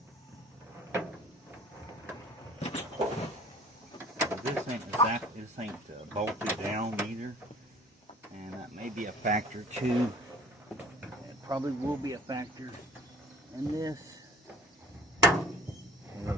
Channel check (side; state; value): both; normal; correlation 0.49